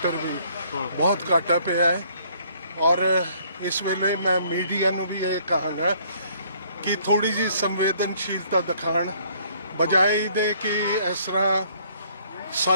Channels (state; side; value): inverted; both; correlation -0.62